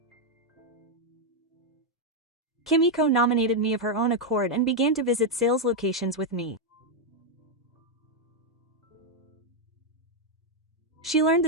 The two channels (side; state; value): both; normal; correlation 0.00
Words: Kimiko nominated me of her own accord and began to visit sales locations with me. She learned